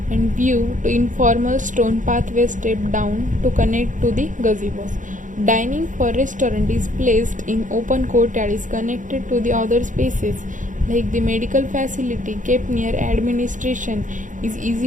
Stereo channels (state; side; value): late; left; 0.37 ms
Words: and view to informal stone pathway step down to connect to the gazebos. Dining for restaurant is placed in open courtyard, is connected to the other spaces like the medical facility kept near administration is